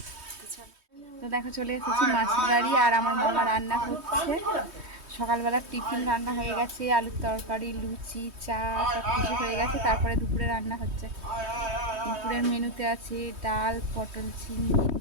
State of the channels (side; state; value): left; late; 3.2 ms